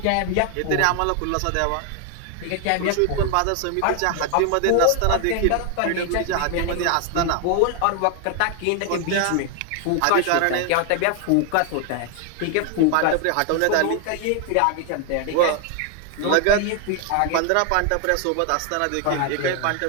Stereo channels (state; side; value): different; both; correlation 0.00